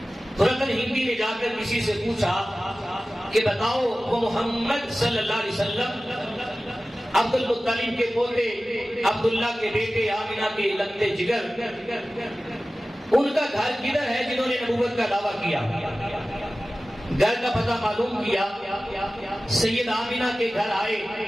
تو رتن ہندی نے جا کر کسی سے پوچھا کہ بتاؤ وہ محمد صلی اللہ علیہ وسلم عبد المطلب کے پوتے عبداللہ کے بیٹے آمنہ کے لگتے جگر ان کا گھر کدھر ہے جنہوں نے نبوت کا دعویٰ کیا. گھر کا پتہ معلوم کیا, سید آمنہ کے گھر آئے,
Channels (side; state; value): both; normal; correlation 0.96